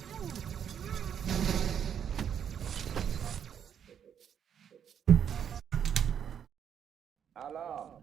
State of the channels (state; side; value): quieter; left; 8.5 dB